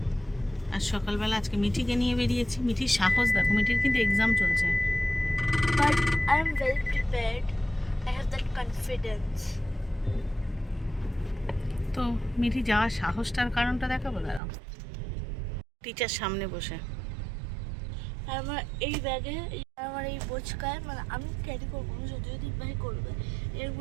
আর সকালবেলা আজকে মিঠিকে নিয়ে বেরিয়েছি। মিঠির সাহস দেখো, মিঠির কিন্তু এক্সাম চলছে। But I am well prepared. I have that confidence. তো মিঠি যাওয়ার সাহসটার কারণটা দেখাবো, দাঁড়াও। টিচার সামনে বসে আর আমার এই ব্যাগে আমার এই বোঝকায় মানে আমি ক্যারি করবো না, যদিও ভাই করবে। এর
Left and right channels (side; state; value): left; drops out; at 14.4 s